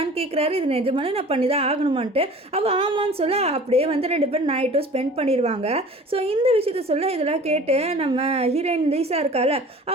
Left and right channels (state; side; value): normal; both; correlation 0.44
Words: கேட்குறாரு இது நிஜமான நான் பண்ணி தான் ஆகணுமான்ட்டு. அவள் ஆமான்னு சொல்ல அப்படியே வந்து ரெண்டு பேரும் நைட்டும் ஸ்பெண்ட் பண்ணிடுவாங்க. ஸோ இந்த விஷயத்த சொல்ல இதெல்லாம் கேட்டு நம்ம ஹீரோயின் லீசா இருக்கால